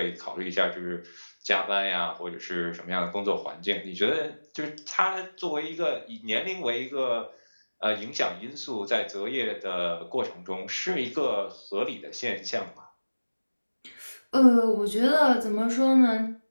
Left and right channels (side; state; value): both; inverted; correlation -1.00